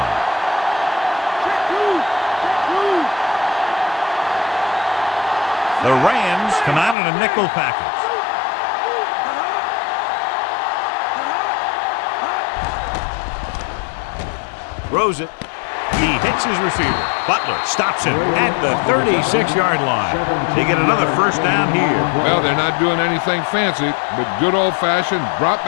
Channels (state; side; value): drops out; right; at 7.0 s